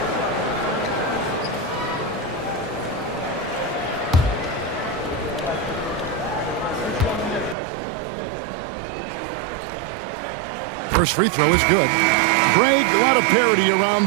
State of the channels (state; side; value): drops out; left; at 7.6 s